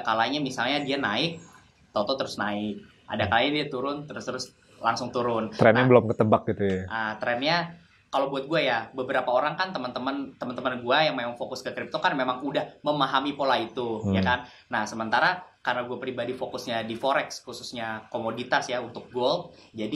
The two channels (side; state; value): both; identical; correlation 1.00